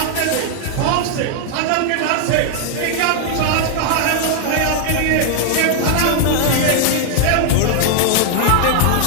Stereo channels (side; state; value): both; different; correlation 0.00